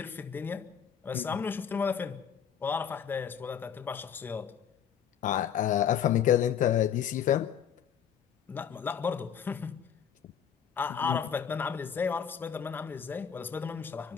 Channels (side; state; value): right; quieter; 8.3 dB